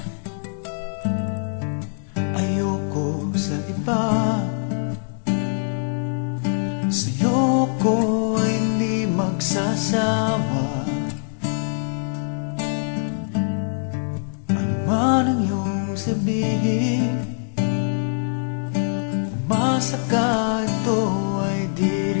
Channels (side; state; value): right; silent; 63 dB below the other